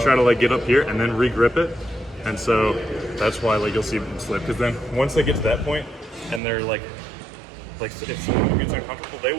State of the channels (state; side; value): drops out; left; at 6.4 s